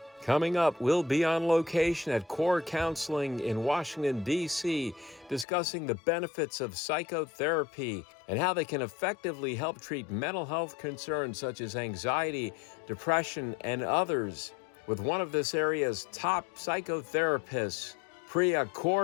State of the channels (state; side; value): drops out; right; at 5.5 s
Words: Coming up, we'll be on location at Kaur Counseling in Washington, D.C., discussing the benefits of psychotherapy and how they can effectively help treat mental health concerns such as anxiety, depression, and others, with one of this area's top psychotherapists, Priya